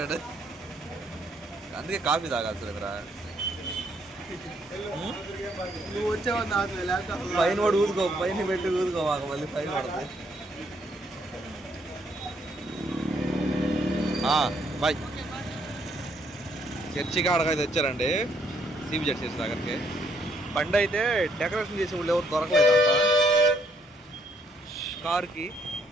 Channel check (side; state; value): both; normal; correlation 0.70